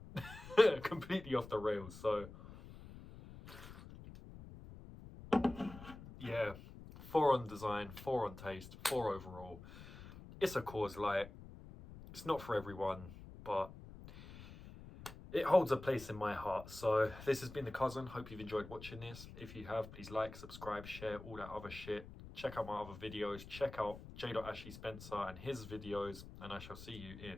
completely off the rails. So yeah, 4 on design, 4 on taste, 4 overall. It's a Coors Light. It's not for everyone, but it holds a place in my heart. So this has been The Cousin. Hope you've enjoyed watching this. If you have, please like, subscribe, share, all that other shit. Check out my other videos. Check out J. Ashley Spencer and his videos. And I shall see you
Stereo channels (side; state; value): left; noise; rumble, 15 dB below the sound